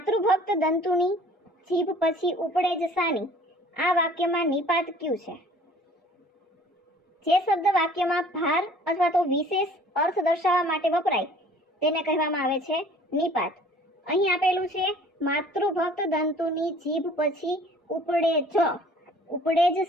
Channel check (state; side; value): normal; both; correlation 0.51